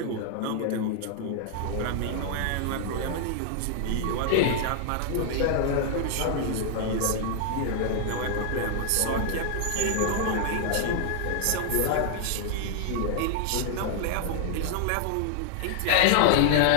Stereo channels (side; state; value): both; different; correlation 0.00